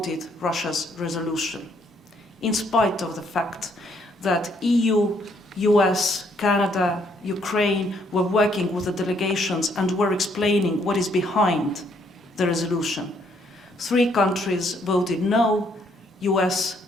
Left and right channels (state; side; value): normal; both; correlation 0.69